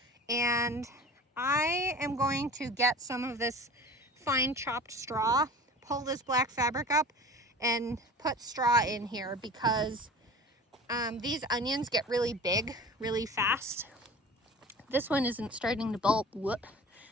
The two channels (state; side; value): normal; both; correlation 0.39